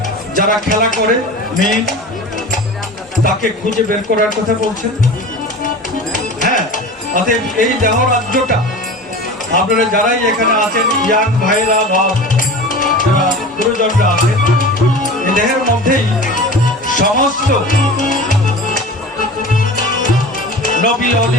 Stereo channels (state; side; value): normal; both; correlation 0.35